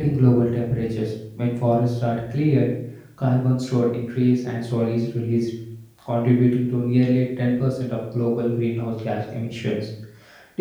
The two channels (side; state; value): both; identical; correlation 1.00